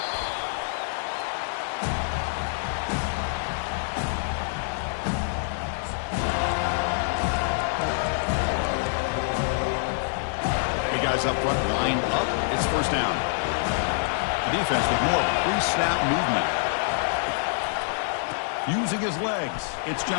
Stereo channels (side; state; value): right; silent; digital silence